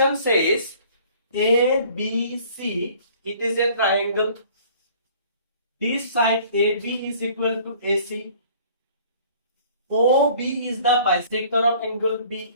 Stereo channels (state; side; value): inverted; both; correlation -0.53